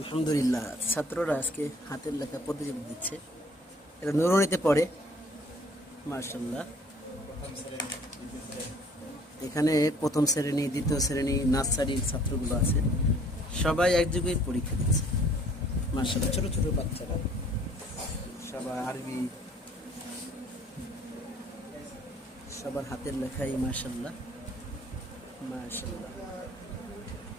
ছাত্ররা আজকে হাতের লেখা প্রতিযোগিতা দিচ্ছে। এটা নুরুনিতে পড়ে। মাশাআল্লাহ, এখানে প্রথম শ্রেণী, দ্বিতীয় শ্রেণী, নার্সারির ছাত্রগুলো আছে। সবাই একযোগে পরীক্ষা দিচ্ছে। মাশাআল্লাহ, ছোট ছোট বাচ্চারা সবাই আরবি, সবার হাতের লেখাই। মাশাআল্লাহ মাশাআল্লাহ।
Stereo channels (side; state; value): both; normal; correlation 0.56